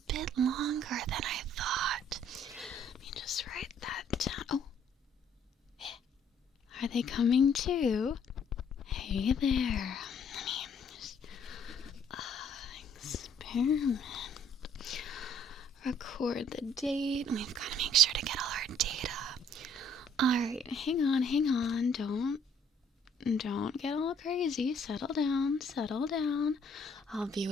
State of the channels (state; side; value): normal; both; correlation 0.62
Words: bit longer than I thought. Let me just write that down. Oh, are they coming too? Hey there. Let me just experiment. Record the date. We've got to make sure to get all our data. Alright, hang on. Don't get all crazy. Settle down. I'll be